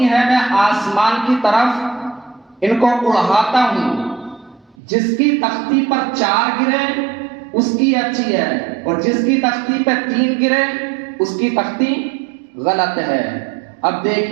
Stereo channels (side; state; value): left; drops out; at 4.8 s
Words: ہیں، میں آسمان کی طرف ان کو اڑاتا ہوں، جس کی تختی پر 4 گرے اس کی اچھی ہے، اور جس کی تختی پہ 3 گرے اس کی تختی غلط ہے۔ اب